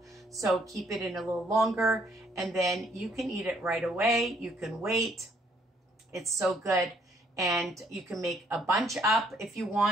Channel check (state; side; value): normal; both; correlation 0.67